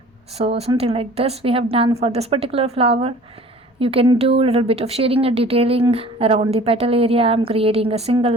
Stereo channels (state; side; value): normal; both; correlation 0.47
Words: So something like this we have done for this particular flower. You can do a little bit of shading and detailing around the petal area. I'm creating a single